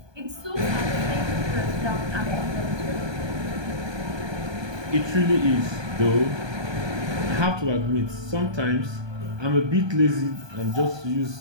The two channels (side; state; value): left; late; 1.2 ms